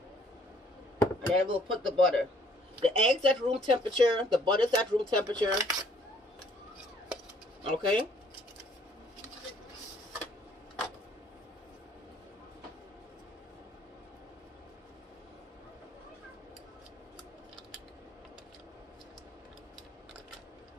and then we'll put the butter. The eggs at room temperature, the butter's at room temperature. Okay.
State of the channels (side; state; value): both; normal; correlation 0.62